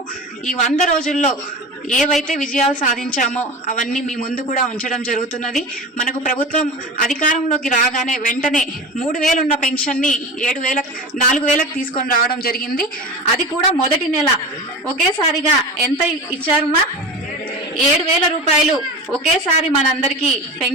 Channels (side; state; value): both; normal; correlation 0.30